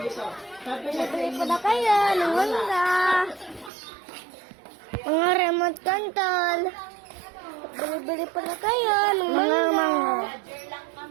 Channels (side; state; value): left; drops out; at 3.7 s